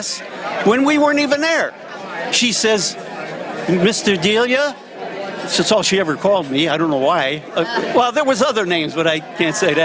when we weren't even there?" She says, "Mr. Delia," that's all she ever called me. I don't know why. Well, there was other names, but I can't say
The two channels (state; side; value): identical; both; correlation 1.00